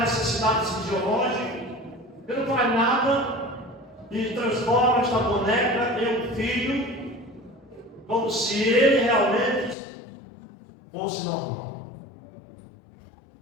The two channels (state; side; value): drops out; right; at 9.8 s